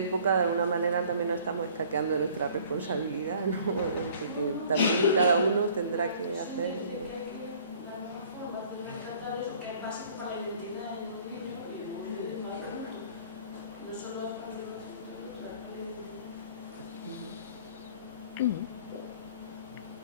de alguna manera también nos estamos escaqueando de nuestra responsabilidad, ¿no? Que también cada uno tendrá que hacer.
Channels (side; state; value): both; inverted; correlation -0.53